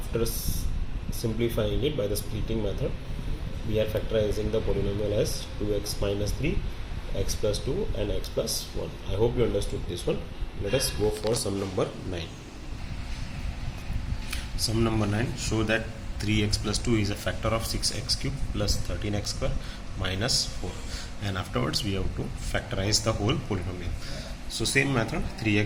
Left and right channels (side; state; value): both; identical; correlation 1.00